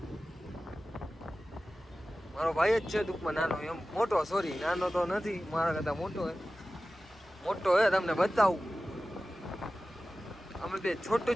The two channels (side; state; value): both; normal; correlation 0.96